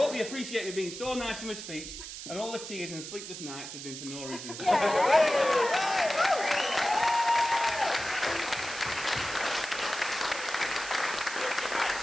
me being so nice in my speech, and all the tears and sleepless nights have been for no reason.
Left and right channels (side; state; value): right; noise; hiss, 10 dB below the sound